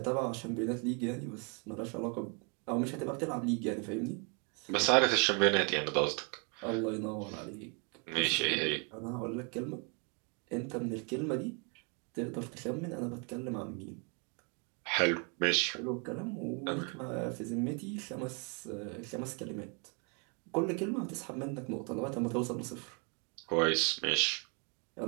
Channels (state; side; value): quieter; left; 35.7 dB